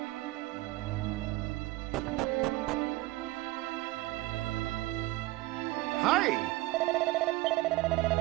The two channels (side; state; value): left; quieter; 18.7 dB